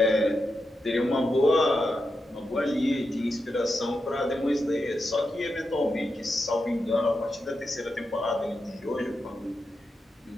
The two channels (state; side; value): normal; both; correlation 0.87